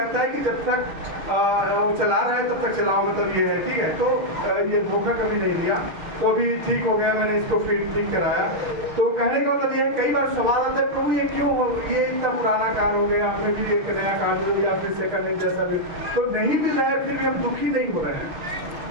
है कि जब तक वो चला रहा है तब तक चलाओ, मतलब ये है, ठीक है। तो ये धोखा कभी नहीं दिया, तो अभी ठीक हो गया, मैंने इसको फिर ठीक कराया। तो कहने का मतलब ये है, कई बार सवाल आता है प्रभु ये क्यों हो, ये इतना पुराना कार हो गया, हमें भी एक नया कार दो या फिर सेकंड हैंड जैसा भी तो नहीं मिल रहा है, फिर भी हम दुखी नहीं हो रहे हैं,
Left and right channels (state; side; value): late; left; 6.4 ms